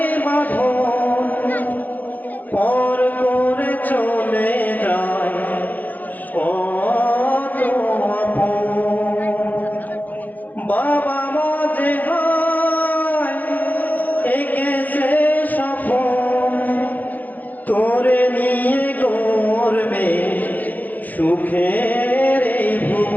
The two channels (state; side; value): late; right; 0.082 ms